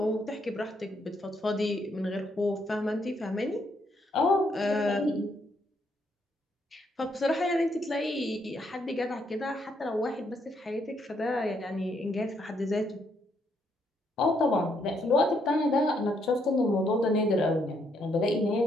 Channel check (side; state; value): both; normal; correlation 0.74